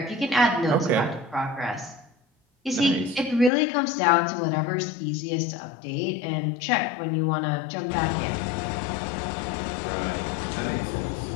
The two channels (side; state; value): right; drops out; at 3.5 s